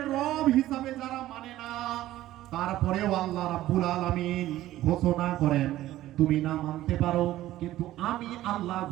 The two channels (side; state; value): left; quieter; 14.7 dB